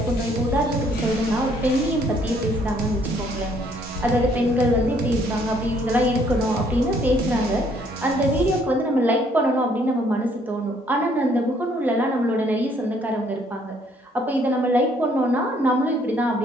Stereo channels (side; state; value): both; normal; correlation 0.65